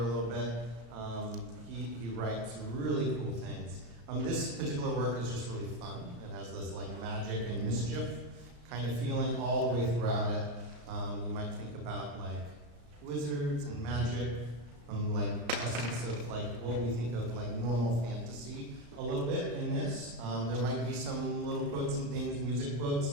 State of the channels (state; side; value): late; left; 34 ms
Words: little bit. He writes really cool things. This particular work is just really fun. It has this like magic and mischief kind of feeling all the way throughout it. You might think about like wizards and magic, like essence of like what we think of like normal fantasy a little bit in this. There might be some little quotes and things, music quotes